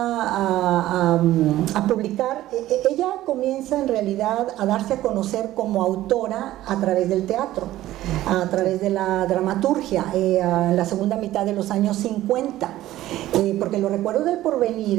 publicar? Ella comienza en realidad a darse a conocer como autora a través del teatro, a través de la dramaturgia, en la segunda mitad de los años 50, porque Los recuerdos del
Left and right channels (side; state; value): left; quieter; 14.8 dB